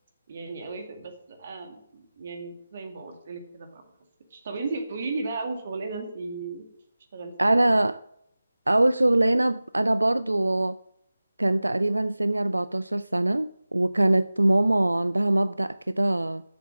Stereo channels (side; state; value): both; inverted; correlation -0.98